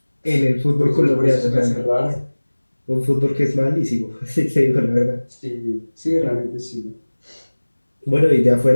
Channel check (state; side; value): inverted; both; correlation -1.00